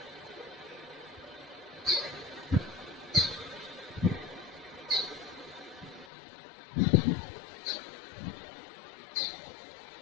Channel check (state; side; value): drops out; right; at 6.1 s